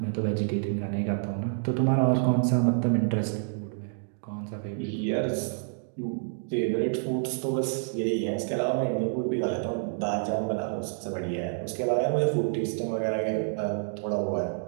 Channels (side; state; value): left; silent; digital silence